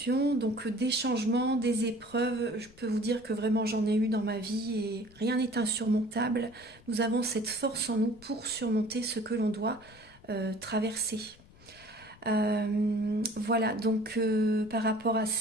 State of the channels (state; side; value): noise; left; rumble, 24 dB below the sound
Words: Donc des changements, des épreuves, je peux vous dire que vraiment j'en ai eu dans ma vie et rien n'est insurmontable. Nous avons cette force en nous pour surmonter ce que l'on doit traverser. Voilà, par rapport à